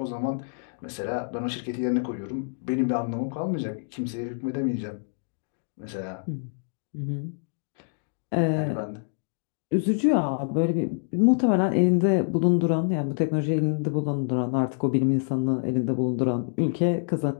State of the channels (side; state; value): right; silent; digital silence